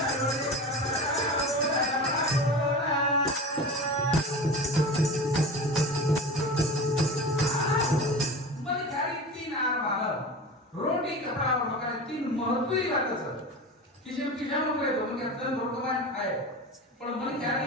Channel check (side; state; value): both; normal; correlation 0.31